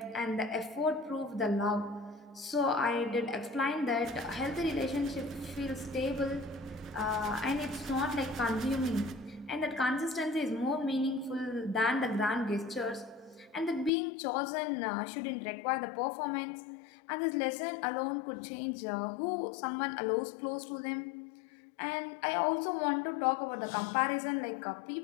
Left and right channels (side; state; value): right; drops out; at 13.9 s